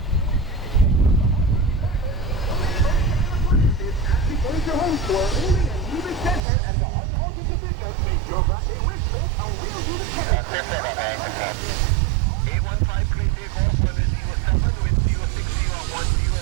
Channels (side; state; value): left; drops out; at 6.4 s